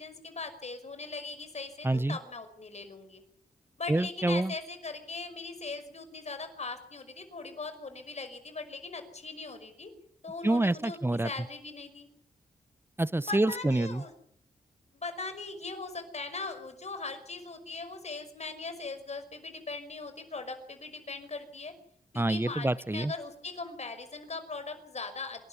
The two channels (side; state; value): both; normal; correlation 0.74